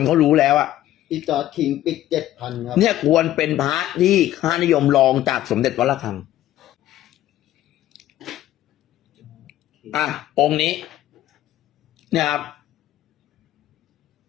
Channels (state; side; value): quieter; right; 13.6 dB